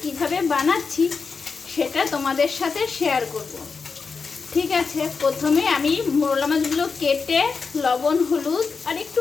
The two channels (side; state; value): right; quieter; 5.0 dB